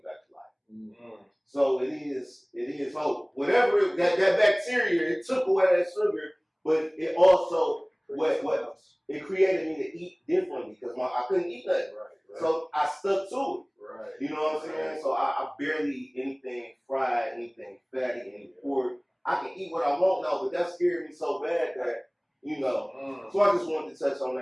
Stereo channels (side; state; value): both; identical; correlation 1.00